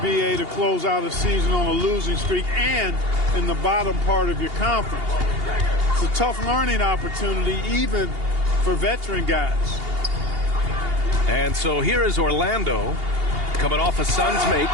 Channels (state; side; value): late; left; 2.8 ms